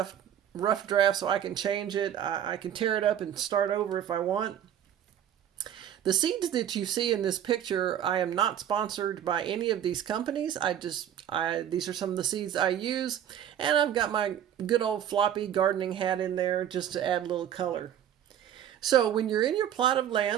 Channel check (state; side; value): quieter; left; 10.2 dB